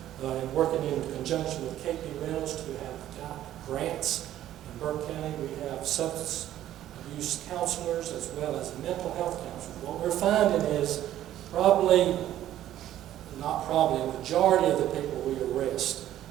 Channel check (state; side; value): quieter; left; 12.6 dB